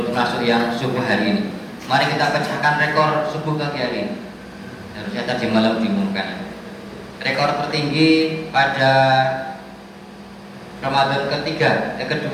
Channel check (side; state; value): both; identical; correlation 1.00